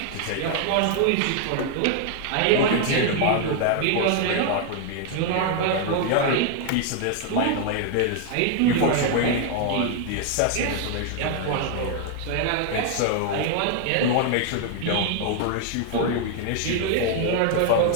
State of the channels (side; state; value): both; different; correlation 0.00